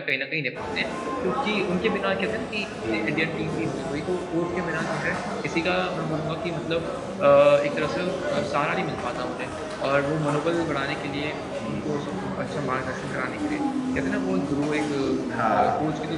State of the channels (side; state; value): both; identical; correlation 1.00